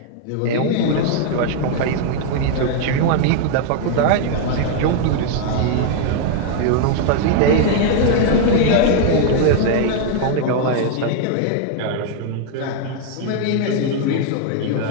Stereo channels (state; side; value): different; both; correlation 0.00